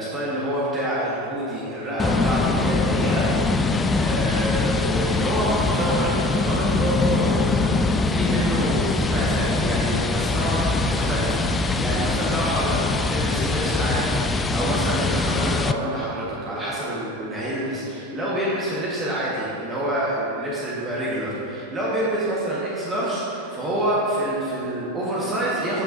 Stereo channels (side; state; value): both; normal; correlation 0.45